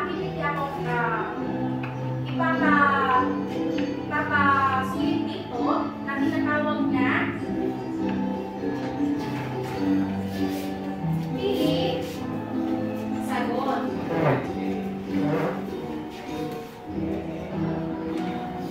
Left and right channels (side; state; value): left; noise; rumble, 28 dB below the sound